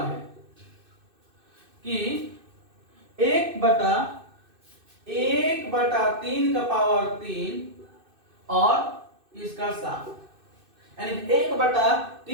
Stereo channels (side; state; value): left; late; 2.6 ms